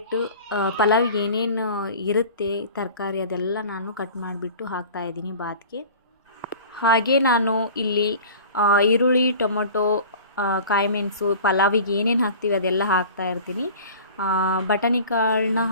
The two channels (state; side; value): inverted; both; correlation -0.41